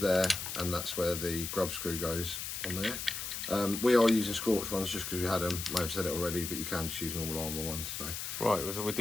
and that's where the grub screw goes on there. We are using scorch ones just because we had them. May have said it already, but you can just use normal armour ones. So. Right, so we'll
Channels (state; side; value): noise; left; hiss, 5 dB below the sound